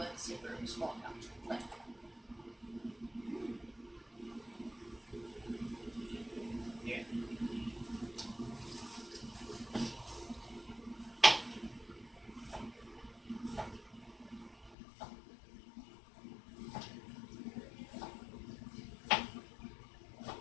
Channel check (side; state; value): right; drops out; at 14.8 s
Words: zipper, small pouch. Left. Here.